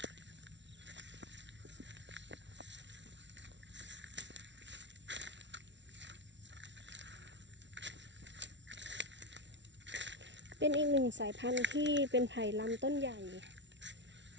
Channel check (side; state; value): left; late; 0.52 ms